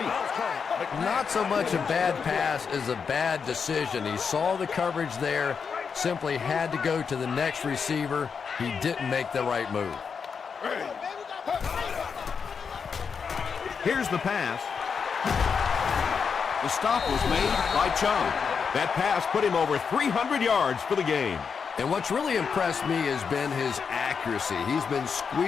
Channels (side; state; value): right; quieter; 6.1 dB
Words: Not so much a bad pass as a bad decision. He saw the coverage there, simply had to go to the next receiver. He didn't make the right move. Here's the pass. The stop was made by Chung. That pass put him over 300 yards for the game. And what's really impressed me has been his accuracy. He's been